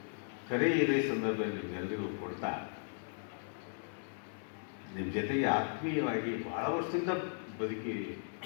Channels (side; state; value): right; silent; 53 dB below the other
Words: ಕರೆ ಇದೇ ಸಂದರ್ಭದಲ್ಲಿ ನಿಮ್ಮೆಲ್ಲರಿಗೂ ಕೊಡ್ತಾ, ನಿಮ್ಮ ಜೊತೆಗೆ ಆತ್ಮೀಯವಾಗಿ ಬಹಳ ವರ್ಷದಿಂದ ಬದುಕಿ